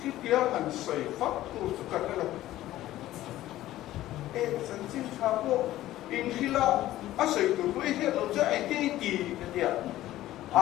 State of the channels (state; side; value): quieter; right; 14.8 dB